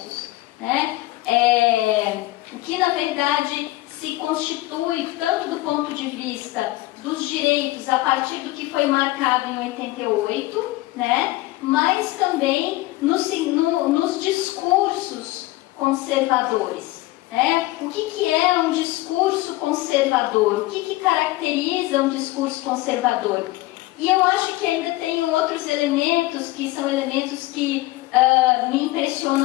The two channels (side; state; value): right; quieter; 18.9 dB